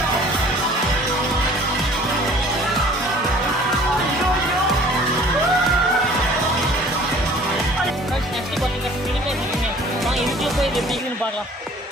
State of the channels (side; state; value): both; normal; correlation 0.51